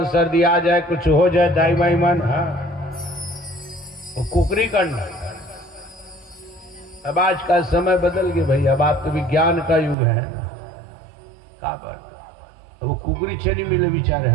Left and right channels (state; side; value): drops out; left; at 10.0 s